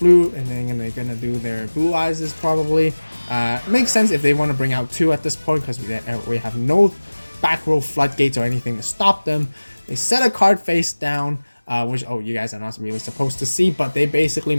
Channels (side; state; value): both; inverted; correlation -1.00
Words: and then they're gonna do their blue eyes probably. It makes sense if they want to bring out 2 at this point, because we have no back row floodgates or anything to stop them. They set a card face down, which you guys are not really supposed to see, but they basically